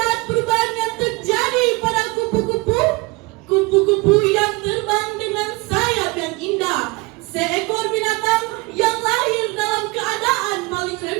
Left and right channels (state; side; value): quieter; left; 25.6 dB